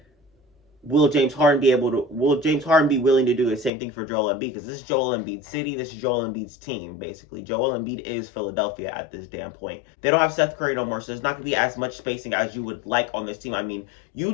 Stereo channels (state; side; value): drops out; right; at 3.7 s